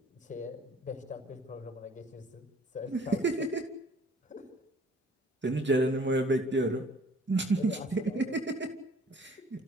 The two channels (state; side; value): normal; both; correlation 0.55